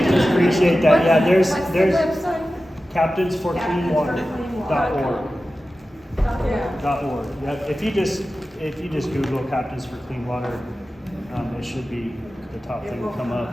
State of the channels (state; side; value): normal; both; correlation 0.94